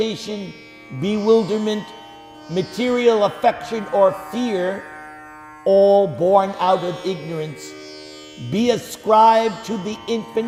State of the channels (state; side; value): identical; both; correlation 1.00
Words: bewilderment, material affection, or fear, all born out of ignorance, be ascribed to the